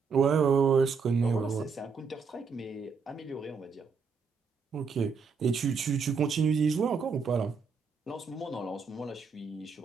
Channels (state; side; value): quieter; left; 5.4 dB